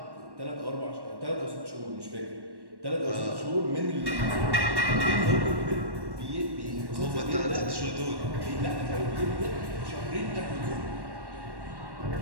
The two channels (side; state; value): left; late; 1.1 ms